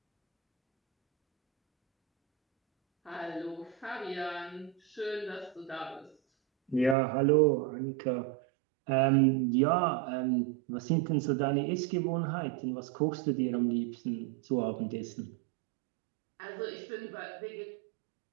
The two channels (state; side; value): drops out; left; at 7.0 s